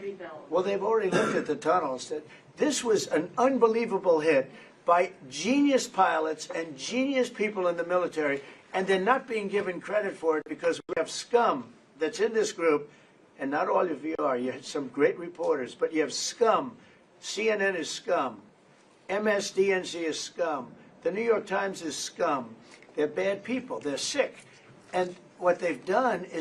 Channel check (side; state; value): both; identical; correlation 1.00